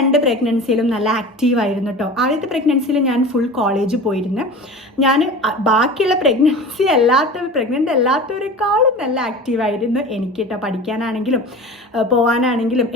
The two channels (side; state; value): both; normal; correlation 0.35